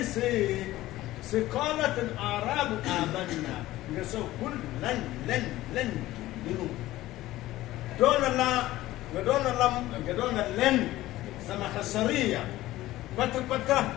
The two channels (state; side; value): quieter; right; 16.2 dB